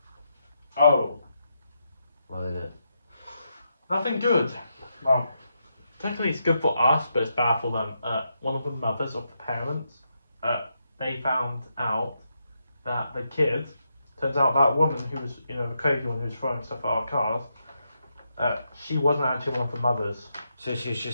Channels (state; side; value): inverted; both; correlation -0.83